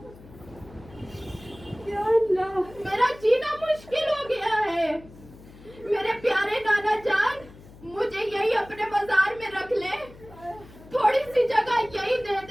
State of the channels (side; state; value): left; noise; hum, 21 dB below the sound